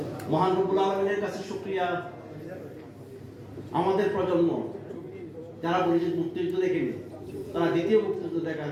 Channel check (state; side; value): identical; both; correlation 1.00